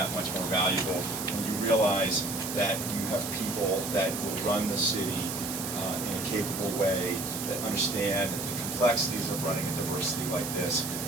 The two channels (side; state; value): right; noise; hiss, 5 dB below the sound